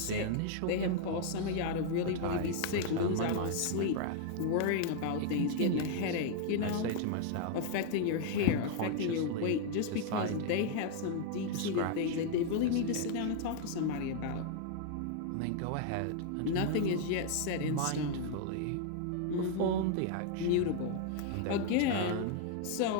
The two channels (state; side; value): different; both; correlation 0.00